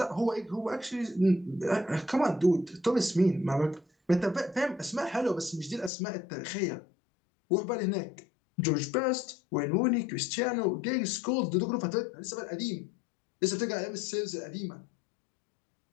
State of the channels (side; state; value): right; drops out; at 5.9 s